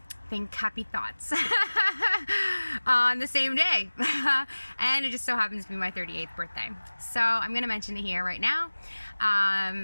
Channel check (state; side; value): inverted; both; correlation -1.00